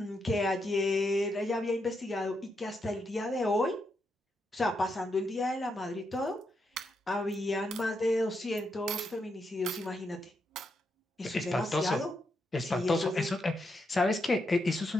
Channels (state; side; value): normal; both; correlation 0.82